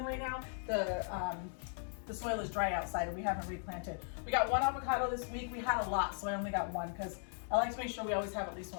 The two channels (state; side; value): silent; right; 53 dB below the other